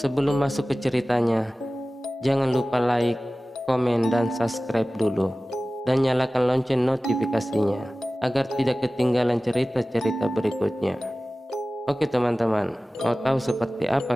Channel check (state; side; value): normal; both; correlation 0.97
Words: masuk ke ceritanya, jangan lupa like, komen, dan subscribe dulu, dan nyalakan lonceng notifikasinya agar tidak ketinggalan cerita-cerita berikutnya. Oke teman-teman, mau tahu seperti